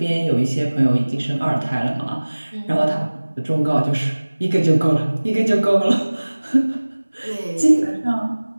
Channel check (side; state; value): both; inverted; correlation -1.00